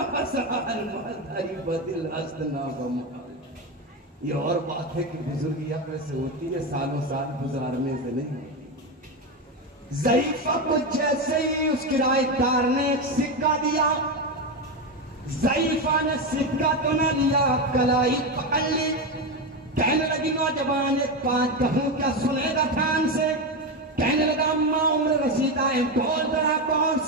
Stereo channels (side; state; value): both; normal; correlation 0.13